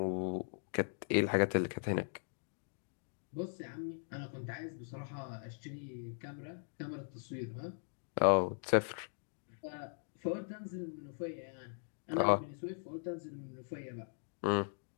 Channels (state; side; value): silent; right; digital silence